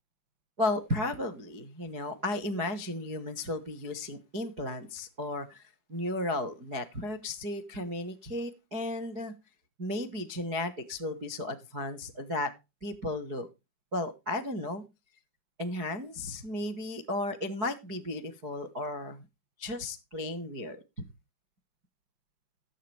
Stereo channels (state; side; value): late; left; 4.8 ms